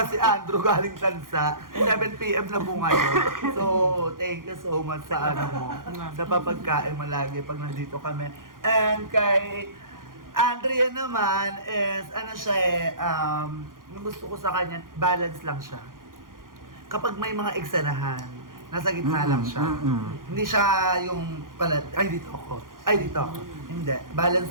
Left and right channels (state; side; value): late; left; 0.90 ms